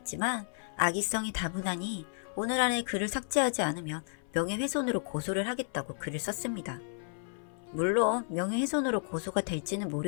악의성이 다분하니 오늘 안에 글을 삭제하지 않으면 명예훼손으로 고소를 하겠다고 글을 썼습니다. 물론 명예훼손으로 고소가 될지는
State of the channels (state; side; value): silent; right; 56 dB below the other